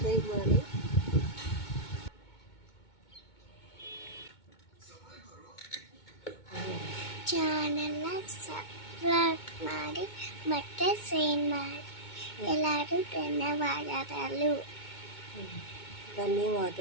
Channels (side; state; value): right; late; 2.2 ms